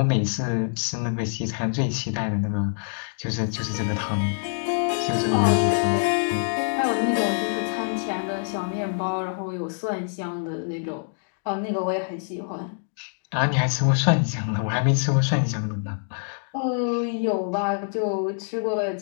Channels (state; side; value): silent; right; digital silence